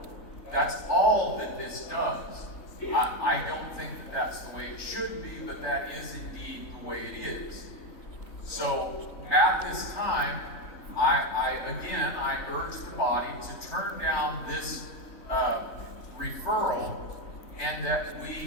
That's all that this does. I don't think that's the way it should be, but that is indeed the way it is. So at this time, I urge the body to turn down this referral, and that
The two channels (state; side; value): late; right; 3.3 ms